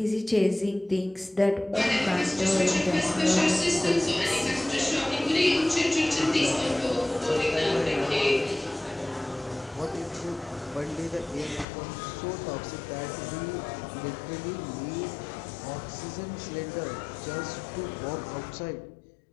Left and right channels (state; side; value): drops out; right; at 11.7 s